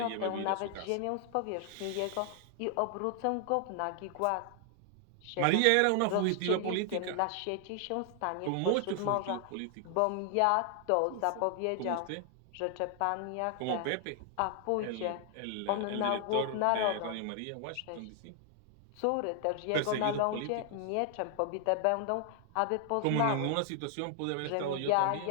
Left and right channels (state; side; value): different; both; correlation 0.00